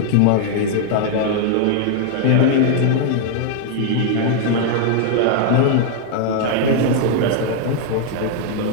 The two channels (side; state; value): both; different; correlation 0.00